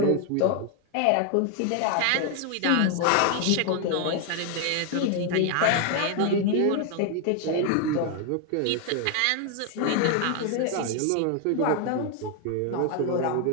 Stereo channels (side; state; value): both; different; correlation 0.01